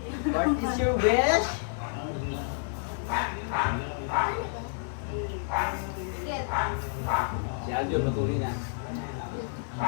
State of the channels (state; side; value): silent; right; 58 dB below the other